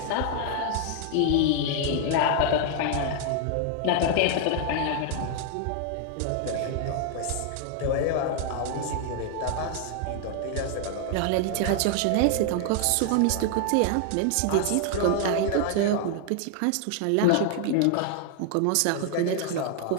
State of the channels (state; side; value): different; both; correlation 0.00